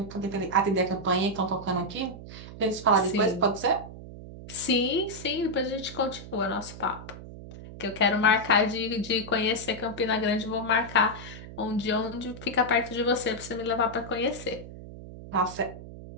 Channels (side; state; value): right; noise; hum, 13 dB below the sound